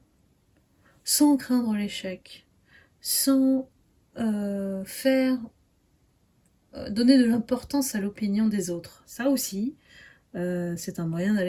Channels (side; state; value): both; identical; correlation 1.00